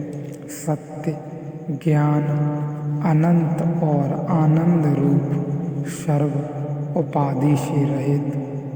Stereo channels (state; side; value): identical; both; correlation 1.00